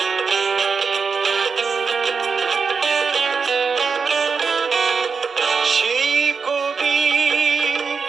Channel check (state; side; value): quieter; left; 5.3 dB